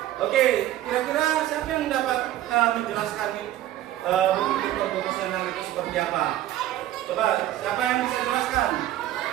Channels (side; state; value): left; quieter; 13.5 dB